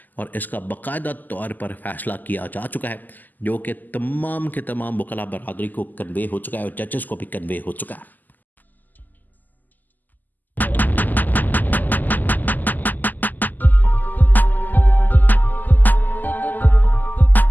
और इसका बाकायदा तौर पर फैसला किया जा चुका है, जो कि तमाम के तमाम वकला बरादरी को कन्वे हो चुका है और जजेस को भी कन्वे हो चुका है।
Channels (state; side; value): late; right; 0.085 ms